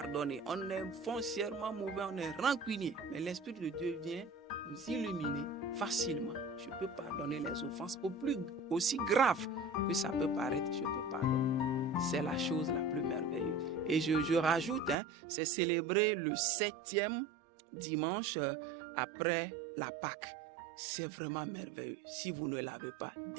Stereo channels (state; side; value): drops out; left; at 15.0 s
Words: On est foncièrement mauvais, on est rancunier. Mais l'Esprit de Dieu vient nous illuminer facilement. Je peux pardonner les offenses aussi graves que ça peut paraître, je peux pardonner. C'est la chose la plus merveilleuse. Et je rajoute, c'est célébrer le 7e dimanche après la Pâque. C'est vraiment merveilleux. Si vous ne l'avez pas,